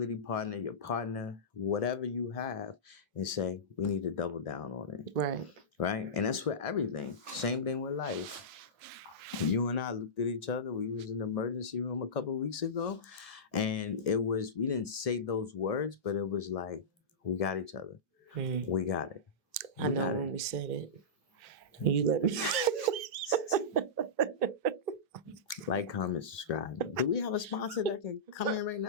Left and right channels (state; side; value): normal; both; correlation -0.17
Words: partner, your partner, whatever you have, and say, we need to double down on it. Right. Right? And that's for everything. Same thing with life. You and I looked at each other. We was in the emergency room a couple of weeks ago. And we didn't say those words, but it was like, we got each other. We got it. I know when we said it. You let me. Like, comment, subscribe. Do we have a sponsor that can come in right